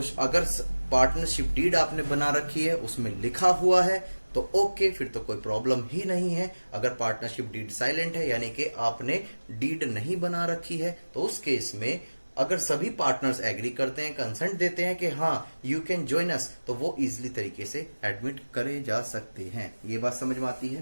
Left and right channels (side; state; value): both; inverted; correlation -1.00